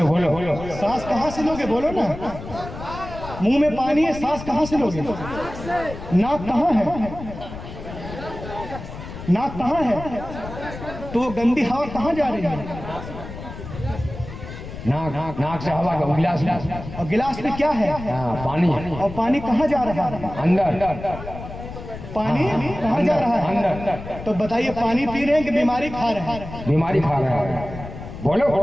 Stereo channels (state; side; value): noise; left; rumble, 11 dB below the sound